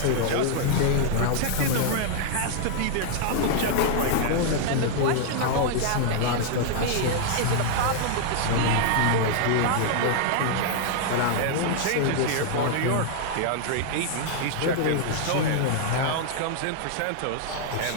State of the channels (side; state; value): both; different; correlation -0.01